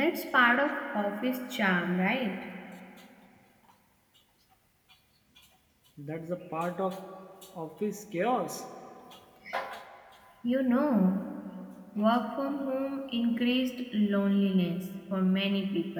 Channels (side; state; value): both; identical; correlation 1.00